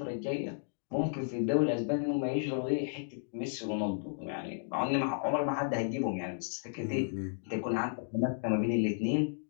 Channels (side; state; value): right; silent; digital silence